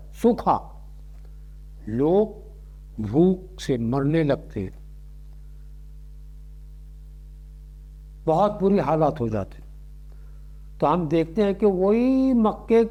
سوکھا، لوگ بھوک سے مرنے لگتے ہیں، بہت بری حالات ہو جاتے ہیں۔ تو ہم دیکھتے ہیں کہ وہی مکے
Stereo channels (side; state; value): both; identical; correlation 1.00